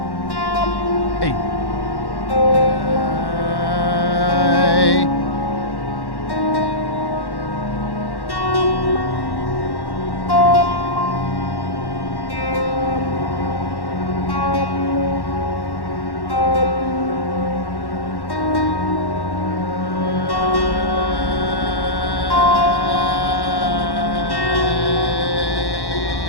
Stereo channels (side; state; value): right; late; 1.1 ms